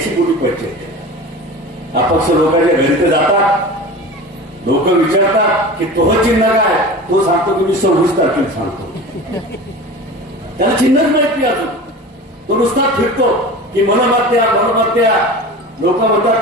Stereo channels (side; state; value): both; normal; correlation 0.34